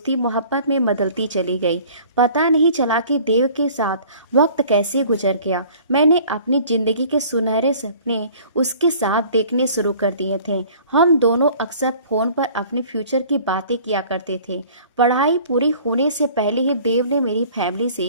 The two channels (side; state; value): both; inverted; correlation -0.50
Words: मोहब्बत में बदलती चली गई। पता नहीं चला कि देव के साथ वक्त कैसे गुजर गया। मैंने अपनी जिंदगी के सुनहरे सपने उसके साथ देखने शुरू कर दिए थे। हम दोनों अक्सर फोन पर अपने फ्यूचर की बातें किया करते थे। पढ़ाई पूरी होने से पहले ही देव ने मेरी फैमिली